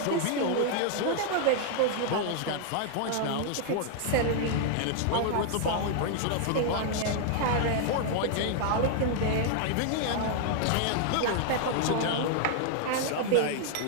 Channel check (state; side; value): different; both; correlation -0.01